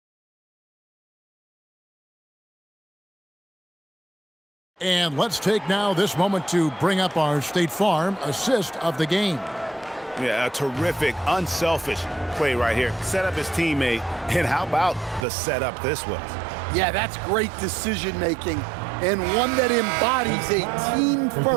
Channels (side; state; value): left; drops out; at 15.2 s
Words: And let's take now this moment to bring up our State Farm assist of the game. Yeah, a terrific, unselfish play right here. Set up his teammate, and how about the setup this was? Yeah, that's great decision-making and one that embodies a